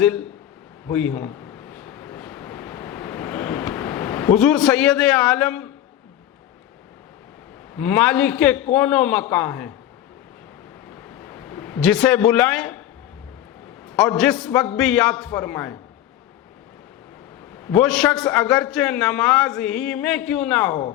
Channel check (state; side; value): quieter; right; 12.2 dB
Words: ہوئی ہوں۔ حضور سید عالم مالک کون و مکان ہیں، جسے بلائیں اور جس وقت بھی یاد فرمائیں، وہ شخص اگرچہ نماز ہی میں کیوں نہ ہو،